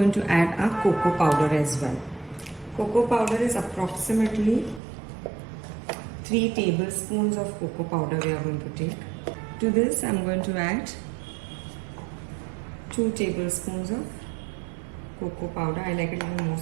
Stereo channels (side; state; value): left; drops out; at 4.8 s